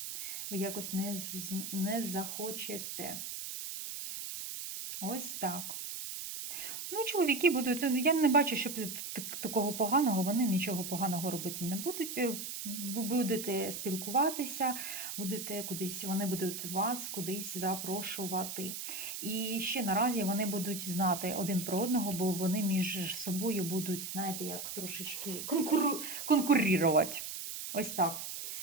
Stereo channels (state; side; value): noise; right; hiss, 6 dB below the sound